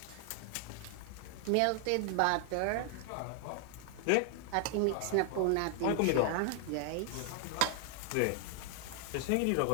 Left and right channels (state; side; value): different; both; correlation 0.00